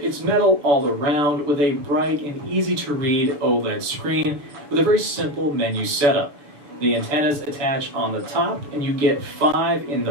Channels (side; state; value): left; late; 7.0 ms